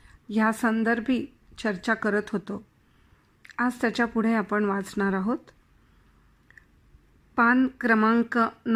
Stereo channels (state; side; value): identical; both; correlation 1.00